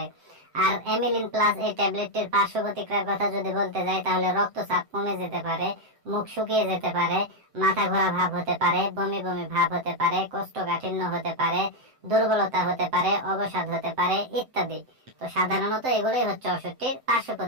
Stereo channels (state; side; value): late; left; 7.7 ms